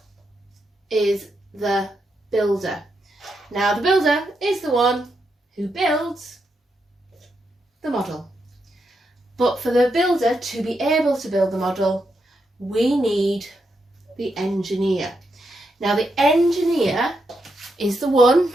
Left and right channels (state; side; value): normal; both; correlation 0.82